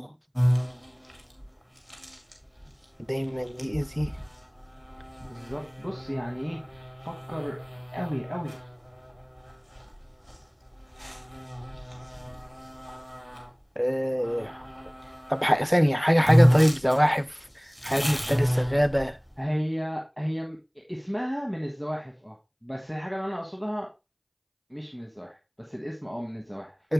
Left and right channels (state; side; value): identical; both; correlation 1.00